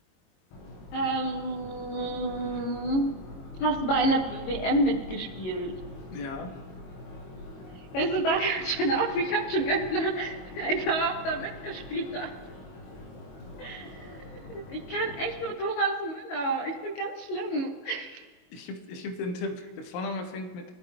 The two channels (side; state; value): right; late; 22 ms